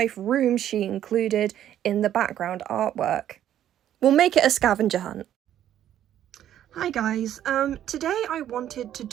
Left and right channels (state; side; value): quieter; left; 11.2 dB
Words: room she included in the background artwork. We'll make it a scavenger hunt. Hi guys, today I wanted to